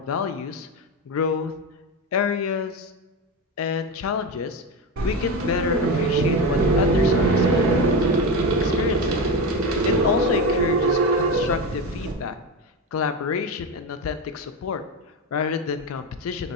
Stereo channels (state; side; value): normal; both; correlation 0.18